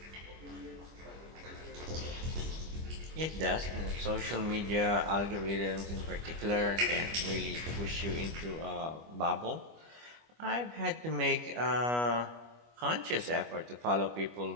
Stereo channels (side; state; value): left; late; 25 ms